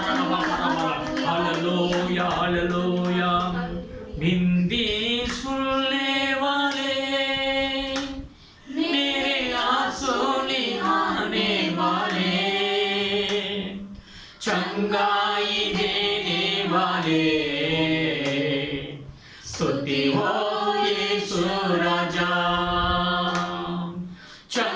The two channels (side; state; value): both; identical; correlation 1.00